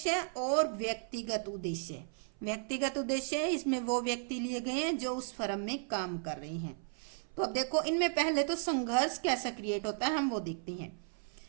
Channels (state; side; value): silent; left; 55 dB below the other